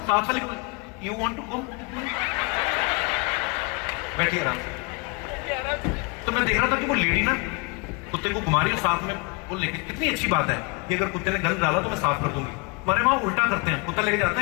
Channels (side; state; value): right; quieter; 29.8 dB